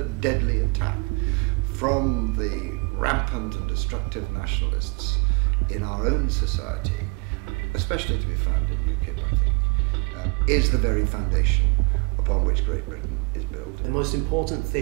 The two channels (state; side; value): quieter; left; 31.5 dB